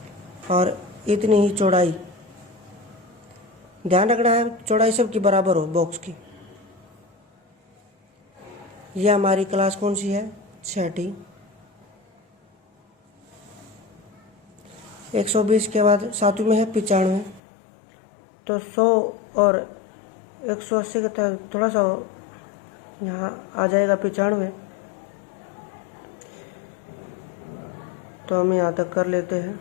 और इतनी ही चौड़ाई, ध्यान रखना है चौड़ाई सबकी बराबर हो बॉक्स की। यह हमारी क्लास कौन सी है? 6ठी। 120 के बाद 7वीं में है 95, तो 100 और 180 के तहत थोड़ा सा यहाँ आ जाएगा 95, तो हम यहाँ तक कर लेते हैं।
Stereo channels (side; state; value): right; drops out; at 17.4 s